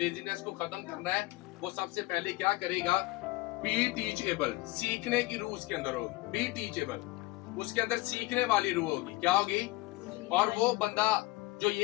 को खत्म करना है वो सबसे पहले क्या करेगा, बी टीचेबल, सीखने की रूह उसके अंदर होगी, बी टीचेबल, उसके अंदर सीखने वाली रूह होगी, क्या होगी। और वो बंदा जो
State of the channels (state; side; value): quieter; right; 20.2 dB